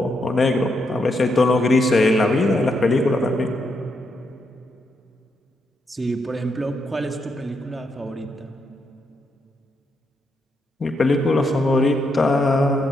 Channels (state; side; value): normal; both; correlation 0.80